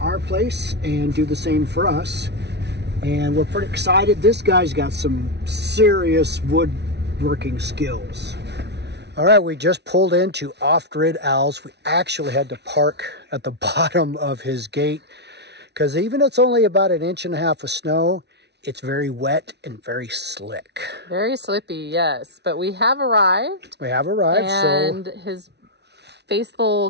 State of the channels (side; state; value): left; late; 0.50 ms